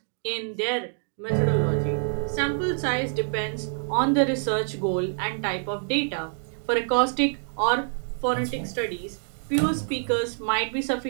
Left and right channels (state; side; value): silent; left; 61 dB below the other